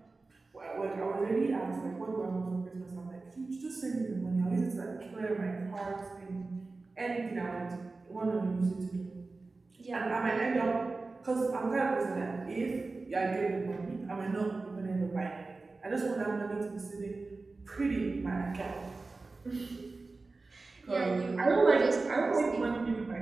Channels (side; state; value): left; quieter; 3.7 dB